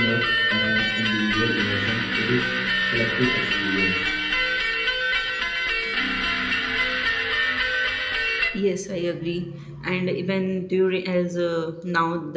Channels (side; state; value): both; identical; correlation 1.00